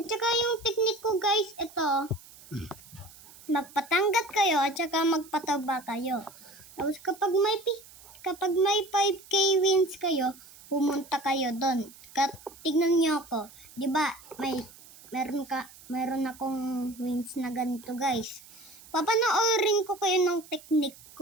saka yung technique ko guys, ito. Magpatanggat kayo at saka magpataba kayo. Tapos kapag may 5K wins kayo, pumunta kayo doon. Tignan niyo ako. 'Di ba? Meron akong wins na ganito, guys. Papanoorin ko kayo ng technique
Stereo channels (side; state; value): right; noise; hiss, 21 dB below the sound